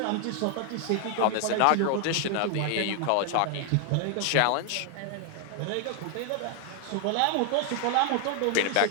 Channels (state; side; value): different; both; correlation 0.00